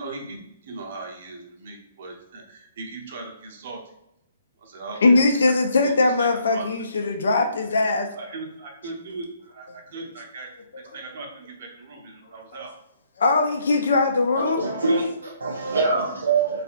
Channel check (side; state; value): both; inverted; correlation -0.69